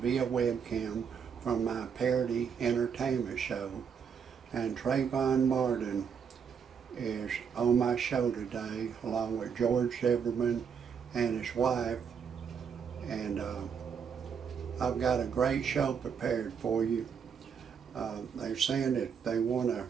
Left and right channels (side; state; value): left; quieter; 6.9 dB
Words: webcam from my parody entertainment show. And Trayvon Martin is on my show today along with George Zimmerman and his wife. And I've got a great show prepared for you. They're saying that they want to